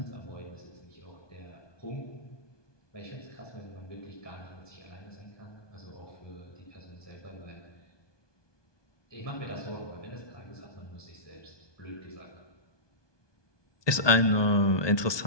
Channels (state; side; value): late; right; 1.2 ms